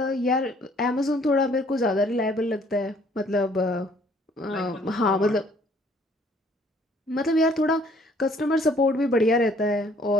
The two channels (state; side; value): normal; both; correlation 0.60